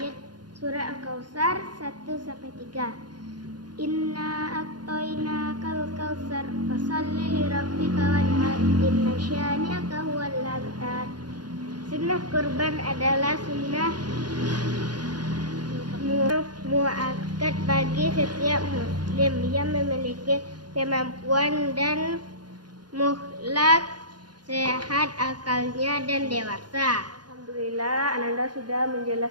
surah Al-Kautsar 1-3. Inna a'tainakal kautsar fasholli lirabbika wanhar inna syani'aka huwal abtar. Sunnah kurban adalah sunnah muakkad bagi setiap muslim yang memiliki kemampuan dan muhlak, sehat akalnya dan dewasa. Alhamdulillah, Ananda sudah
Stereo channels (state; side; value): late; left; 0.70 ms